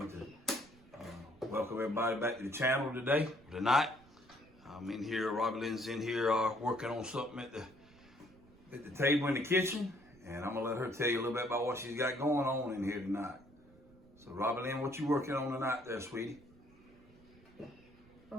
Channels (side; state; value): right; noise; rumble, 26 dB below the sound